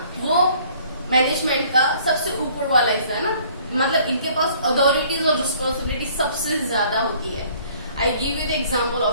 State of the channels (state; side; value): inverted; both; correlation -0.57